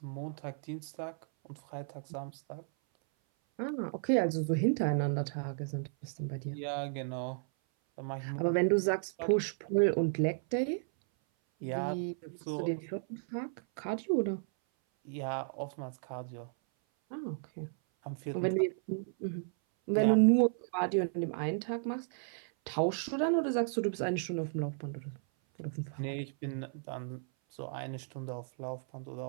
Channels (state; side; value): silent; left; 55 dB below the other